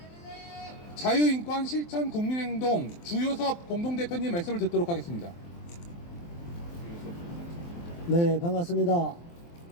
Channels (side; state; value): right; late; 23 ms